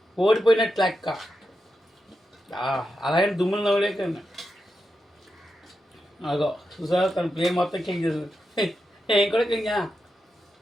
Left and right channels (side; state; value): both; normal; correlation 0.87